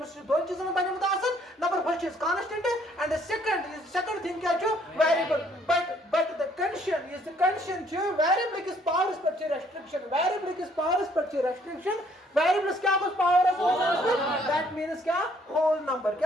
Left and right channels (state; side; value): normal; both; correlation 0.64